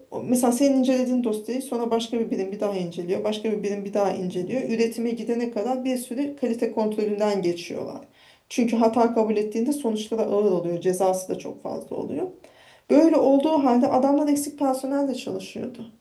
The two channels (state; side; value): identical; both; correlation 1.00